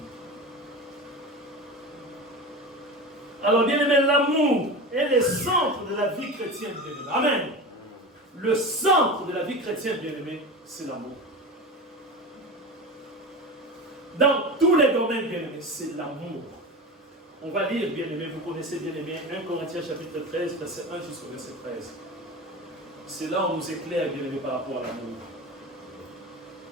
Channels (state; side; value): normal; both; correlation 0.28